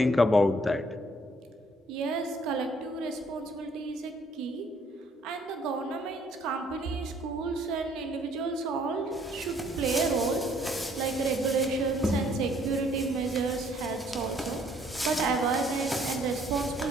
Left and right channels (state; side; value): normal; both; correlation 0.63